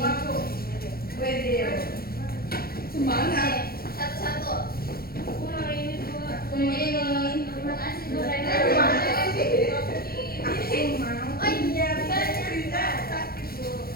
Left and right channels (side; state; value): right; late; 0.44 ms